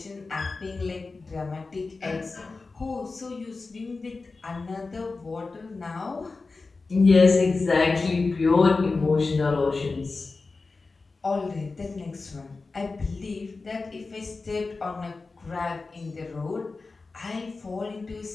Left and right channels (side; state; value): right; quieter; 3.9 dB